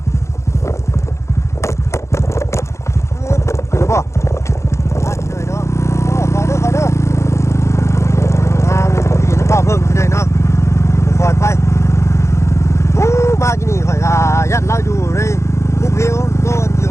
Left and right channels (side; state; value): right; late; 0.14 ms